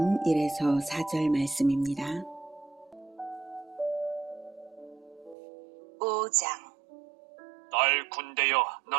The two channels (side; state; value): left; drops out; at 5.4 s